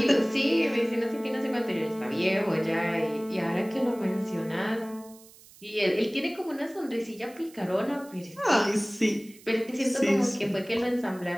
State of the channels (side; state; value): right; noise; hiss, 23 dB below the sound